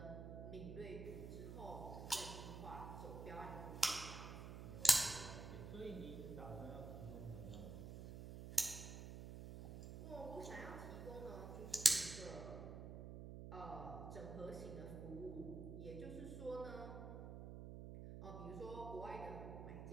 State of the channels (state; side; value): noise; right; hum, 8 dB below the sound